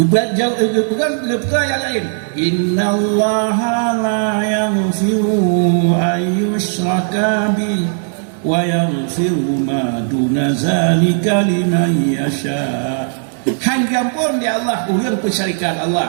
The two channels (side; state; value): left; silent; 69 dB below the other